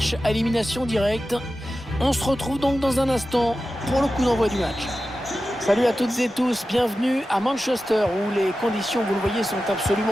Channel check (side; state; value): both; normal; correlation 0.93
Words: à élimination directe. On se retrouve donc dans un instant pour le coup d'envoi du match. Salut à toutes et tous, bienvenue à Manchester où les conditions, vous le voyez, sont